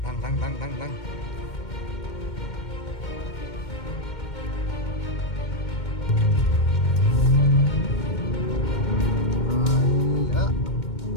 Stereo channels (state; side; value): late; right; 2.2 ms